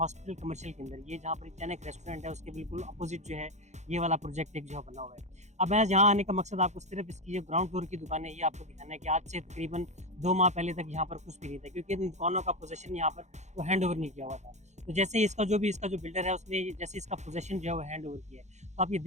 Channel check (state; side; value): late; left; 0.33 ms